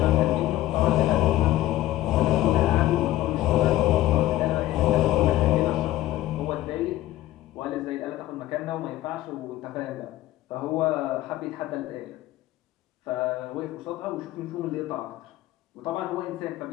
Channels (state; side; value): quieter; right; 15.1 dB